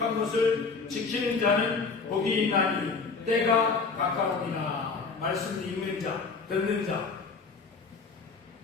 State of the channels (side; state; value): right; quieter; 4.7 dB